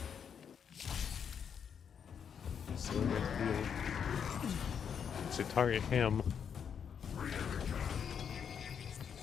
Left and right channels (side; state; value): right; quieter; 7.5 dB